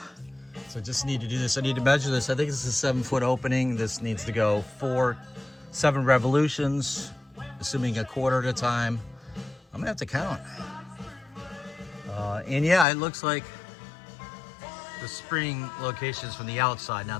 So I just need to do this. I need to measure this. I think this is a 7-foot opening. This needs to go 7 revolutions, assuming a quarter at a time. I'm gonna have to count. And yeah, it looks like the spring location's from the outside,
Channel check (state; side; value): drops out; right; at 12.9 s